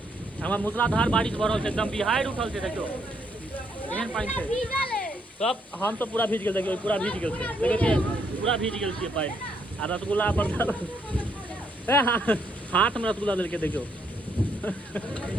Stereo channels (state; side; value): normal; both; correlation 0.73